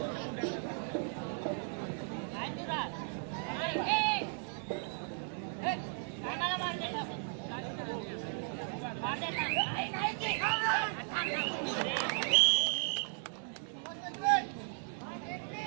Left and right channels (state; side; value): silent; left; 54 dB below the other